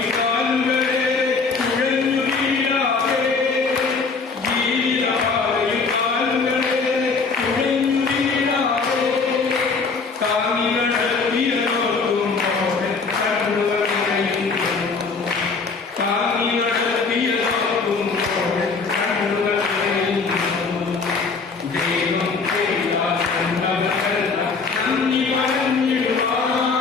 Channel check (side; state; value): right; quieter; 4.6 dB